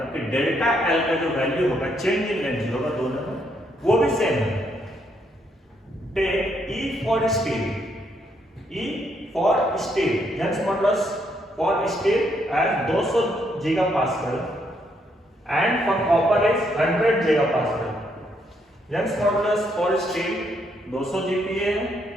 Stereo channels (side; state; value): both; normal; correlation 0.74